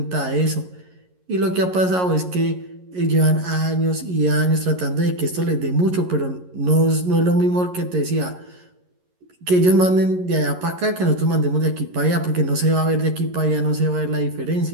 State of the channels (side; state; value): left; late; 11 ms